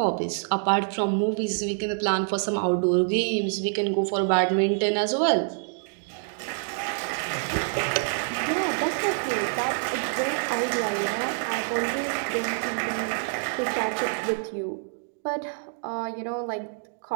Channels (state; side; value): silent; left; digital silence